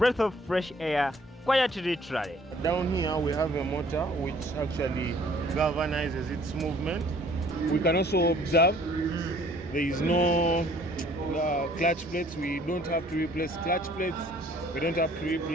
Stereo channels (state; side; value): normal; both; correlation 0.57